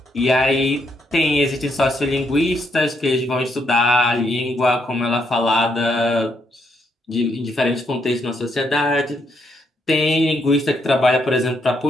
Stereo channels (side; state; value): both; normal; correlation 0.76